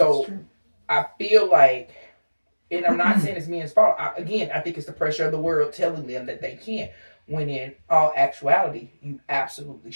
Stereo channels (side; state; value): both; inverted; correlation -1.00